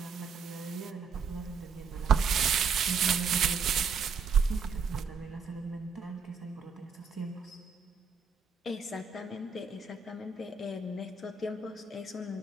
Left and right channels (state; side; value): quieter; left; 5.5 dB